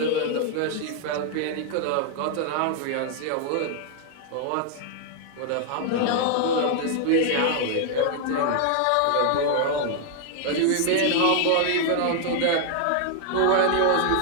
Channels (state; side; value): different; both; correlation 0.00